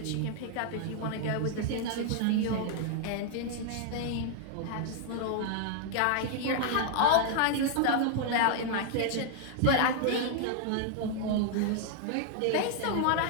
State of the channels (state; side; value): different; both; correlation 0.00